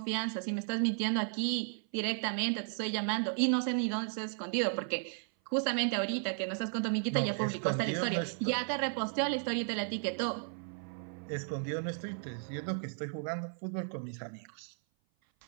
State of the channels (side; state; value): left; silent; 55 dB below the other